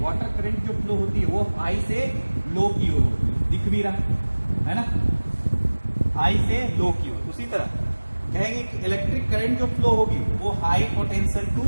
वाटर करंट जो फ्लो होती है वो हाई से लो की ओर होती है, दिख भी रहा है ना, हाई से लो की ओर। उसी तरह कहेंगे कि इलेक्ट्रिक करंट जो फ्लो होगी वो high potential to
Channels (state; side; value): inverted; both; correlation -1.00